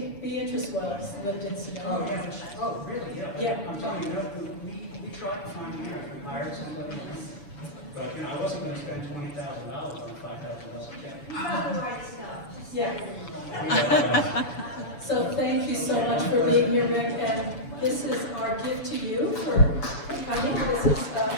Beatrice Wells lived in Sedona. Oh, yeah. Oh, really? Yeah. Yeah. I'm telling you, we tried to find a year, we hired somebody, but, you know, I wasn't gonna spend $20,000 on a $5,000 check. You got the right stuff. Just Yeah. Yeah. So thank you so much for being here, Rick, and this is our gift to you for coming. This is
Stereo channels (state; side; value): late; right; 6.9 ms